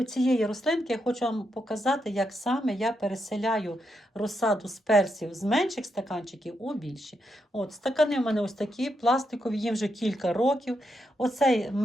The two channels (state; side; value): normal; both; correlation 0.82